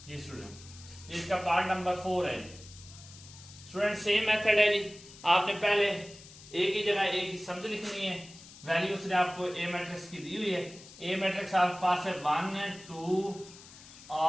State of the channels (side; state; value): left; noise; hiss, 19 dB below the sound